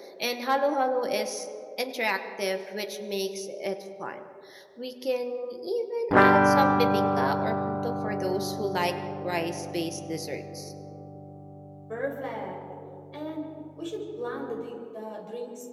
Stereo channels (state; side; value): identical; both; correlation 1.00